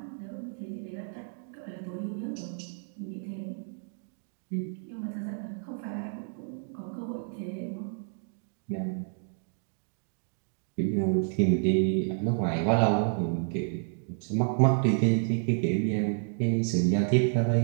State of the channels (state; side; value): silent; left; digital silence